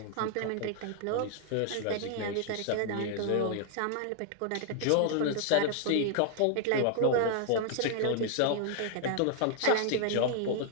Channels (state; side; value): different; both; correlation 0.00